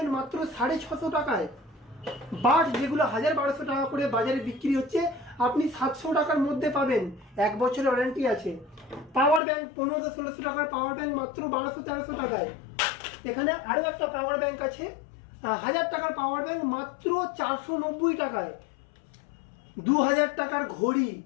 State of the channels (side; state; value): right; drops out; at 9.4 s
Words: মাত্র 650 টাকায়। বাড যেগুলো 1200 টাকা করে বাজারে বিক্রি হচ্ছে, আপনি 700 টাকার মধ্যে পাবেন, 1 বছরের ওয়ারেন্টি আছে। পাওয়ার ব্যাংক 1500-1600 টাকার পাওয়ার ব্যাংক মাত্র 1200-1300 টাকায়। এখানে আরও একটা পাওয়ার ব্যাংক আছে, 1000 টাকার পাওয়ার ব্যাংক মাত্র 490 টাকায়। 2000 টাকার ঘড়ি